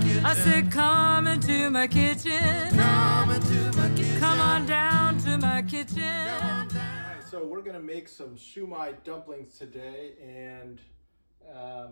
kitchen. I said, come into my kitchen. Come into my kitchen. Come on down to my kitchen. Alright, so we're gonna make some Shu Mai dumplings today, and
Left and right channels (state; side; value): inverted; both; correlation -1.00